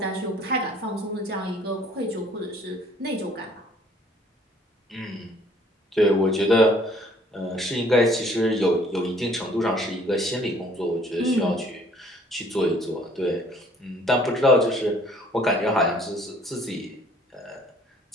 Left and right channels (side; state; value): both; normal; correlation 0.57